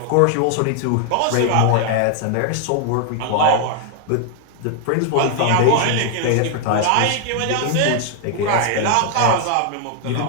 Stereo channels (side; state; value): both; different; correlation 0.00